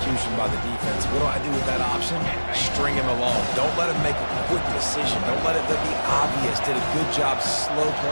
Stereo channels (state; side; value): inverted; both; correlation -1.00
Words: by the defense. What do I do with that option? String him along. Don't let him make a quick decision. Don't let it be obvious. Did a good job slow